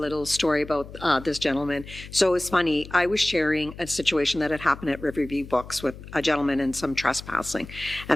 story about this gentleman. So it's funny, I was sharing a situation that had happened at Riverview Books with a gentleman and some trespassing.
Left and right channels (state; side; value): noise; left; hum, 15 dB below the sound